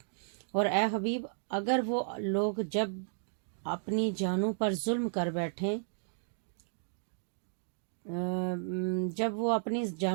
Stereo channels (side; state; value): left; silent; digital silence